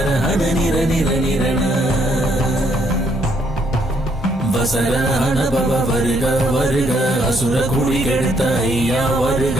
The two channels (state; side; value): normal; both; correlation 0.70